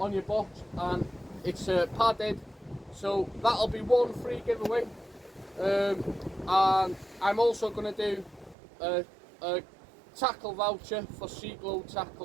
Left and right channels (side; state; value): left; drops out; at 8.6 s